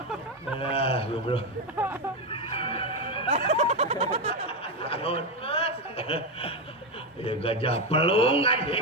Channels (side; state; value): both; normal; correlation 0.10